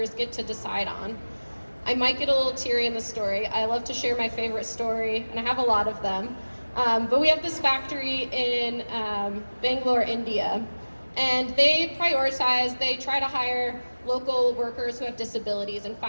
get to decide on. I might get a little teary in the story. I love to share my favorite story, and I have a lot of them. But we have this factory in Bangalore, India, and they try to hire local workers who have disabilities and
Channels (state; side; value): inverted; both; correlation -1.00